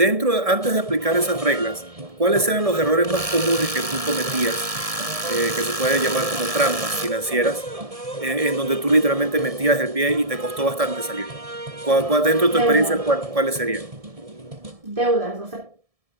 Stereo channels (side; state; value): left; late; 1.7 ms